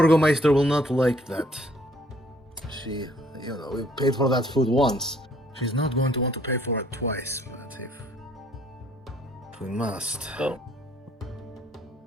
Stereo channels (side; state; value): both; normal; correlation 0.62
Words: will not like that. She, we paid for that food once. She's not going to want to pay for it twice, but if we must. Oh.